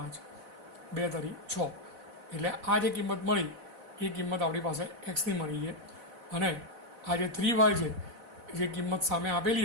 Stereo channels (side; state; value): left; late; 4.0 ms